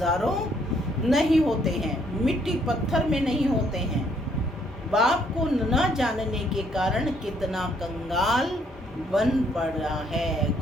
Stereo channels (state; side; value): normal; both; correlation 0.68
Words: नहीं होते हैं, मिट्टी पत्थर में नहीं होते हैं। बाप को न जानने के कारण कितना कंगाल बन पड़ा है।